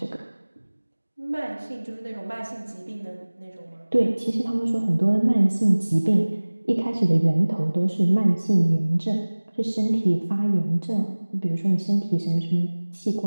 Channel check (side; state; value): both; inverted; correlation -1.00